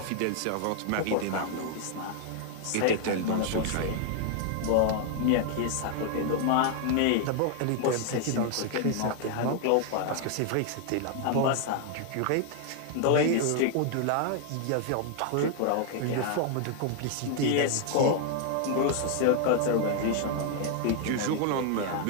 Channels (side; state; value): both; different; correlation 0.00